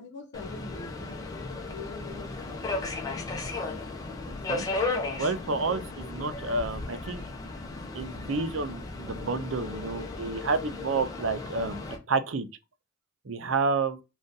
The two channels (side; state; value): both; normal; correlation -0.08